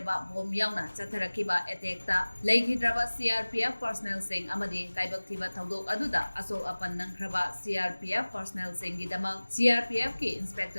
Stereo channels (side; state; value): both; inverted; correlation -1.00